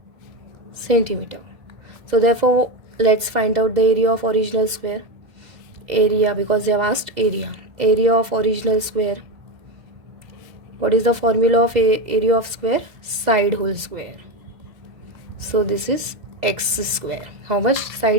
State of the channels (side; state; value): left; late; 2.1 ms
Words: centimeter. So therefore, let's find out the area of original square. Area, because they have asked area. Area of original square. What is the formula of area of square? Side whole square. So this is x square. How much?